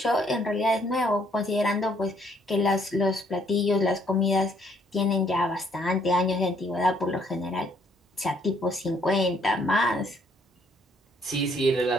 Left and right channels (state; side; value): normal; both; correlation 0.67